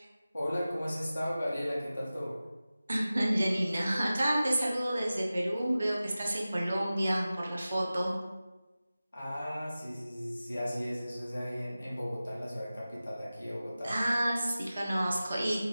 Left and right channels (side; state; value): both; inverted; correlation -0.96